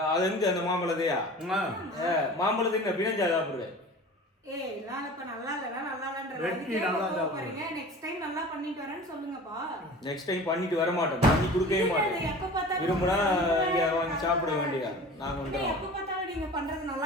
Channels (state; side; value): normal; both; correlation 0.39